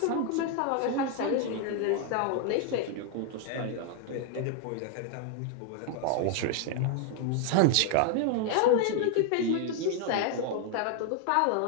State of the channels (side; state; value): both; different; correlation 0.00